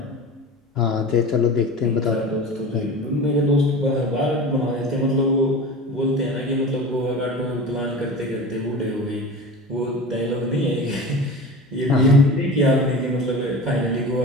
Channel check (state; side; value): normal; both; correlation 0.33